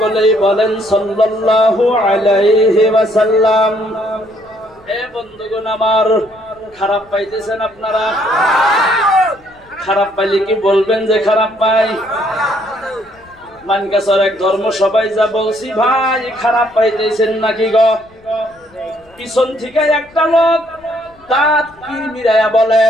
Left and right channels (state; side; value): noise; left; rumble, 29 dB below the sound